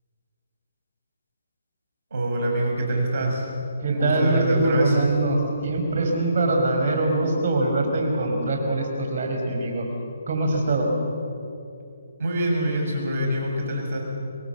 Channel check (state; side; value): inverted; both; correlation -0.73